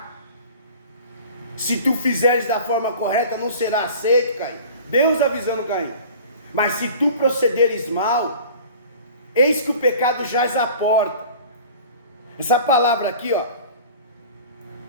Se tu fizeres da forma correta, não será aceito, Caim. Deus avisando Caim: mas se tu procederes mal, eis que o pecado jaz à porta. Essa palavra aqui, ó,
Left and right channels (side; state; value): both; inverted; correlation -0.43